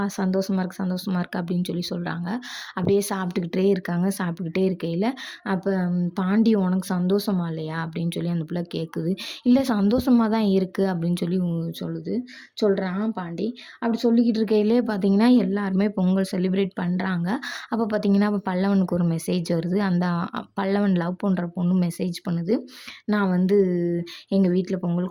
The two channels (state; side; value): identical; both; correlation 1.00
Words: சந்தோஷமாக இருக்குது அப்படின்னு சொல்லி சொல்கிறாங்க. அப்படியே சாப்பிட்டுக்கிட்டே இருக்காங்க. சாப்பிட்டுக்கிட்டே இருக்கையில் அப்போ பாண்டி உனக்கு சந்தோஷமா இல்லையா அப்படின்னு சொல்லி அந்த பிள்ளை கேட்குது. இல்லை சந்தோஷமாக தான் இருக்குது அப்படின்னு சொல்லி சொல்கிறான் பாண்டி. அப்படி சொல்லிக்கிட்டு இருக்கையிலே பார்த்தீங்கன்னா எல்லாருமே பொங்கல் செலிப்ரேட் பண்ணுறாங்க. அப்போ பார்த்தீங்கன்னா அப்போ பல்லவனுக்கு ஒரு மெசேஜ் வருது. அந்த பல்லவன் லவ் பண்ணுற பொண்ணு மெசேஜ் பண்ணுது, நான் வந்து எங்கள் வீட்டில்